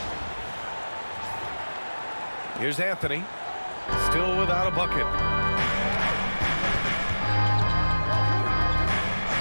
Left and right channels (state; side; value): inverted; both; correlation -1.00